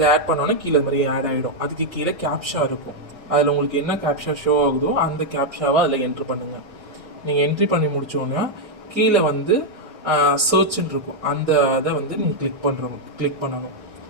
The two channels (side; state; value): left; late; 1.6 ms